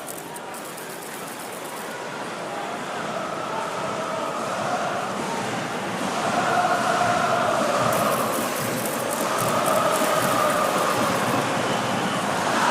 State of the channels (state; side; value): identical; both; correlation 1.00